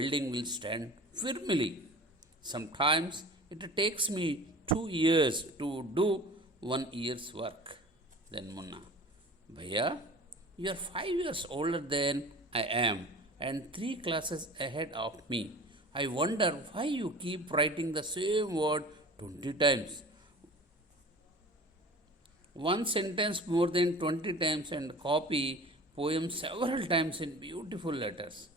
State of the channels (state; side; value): normal; both; correlation 0.40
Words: will stand firmly. Sometimes it takes me 2 years to do 1 year's work. Then Munna, Bhaiya, you are 5 years older than I am and 3 classes ahead of me. I wonder why you keep writing the same word 20 times. One sentence more than 20 times and copy poems several times in beautiful letters.